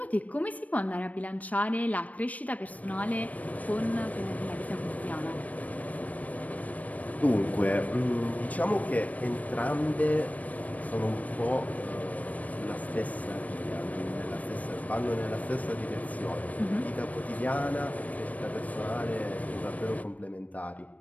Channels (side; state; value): right; late; 0.071 ms